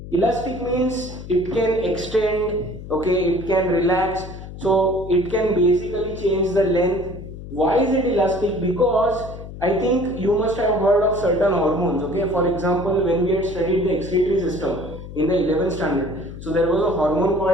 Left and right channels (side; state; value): left; noise; hum, 12 dB below the sound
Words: Elastic means it can extend, okay, it can relax, so it can basically change the length. Why is it elastic? Because I think you must have heard of certain hormones, okay. For example, when we had studied the excretory system in the 11th standard, so there was a hormone